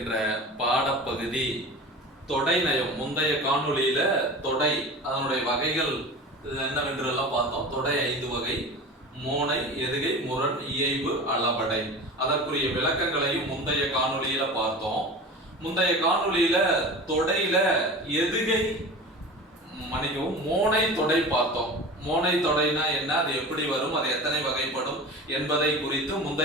பாடப்பகுதி தொடை நயம். முந்தைய காணொளியில தொடை அதனுடைய வகைகள் என்னவென்றெல்லாம் பார்த்தோம். தொடை 5 வகை: மோனை, எதுகை, முரண், இயைபு, அளபடை. அதற்குரிய விளக்கங்களையும் முந்தைய காணொளியில பார்த்தோம். முந்தைய காணொளியில தொடையில எதுகை மோனை தொடை பார்த்தோம். மோனை தொடைனா என்ன, அது எப்படி வரும், அது எத்தனை வகைப்படும் என்பதை குறித்து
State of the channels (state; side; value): normal; both; correlation 0.34